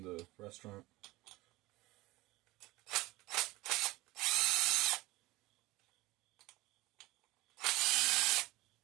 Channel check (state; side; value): quieter; left; 20.0 dB